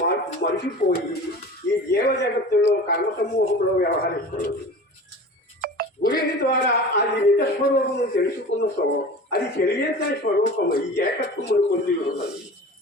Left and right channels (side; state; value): both; normal; correlation 0.37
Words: మరిచిపోయి ఈ జీవ జగత్తులో కర్మ సమూహంలో వ్యవహరిస్తున్నది. గురి ద్వారా అది నిజ స్వరూపము తెలుసుకున్న అది తెలియని స్వరూపము ఈ ఏకత్వమును పొంది ఉన్నది.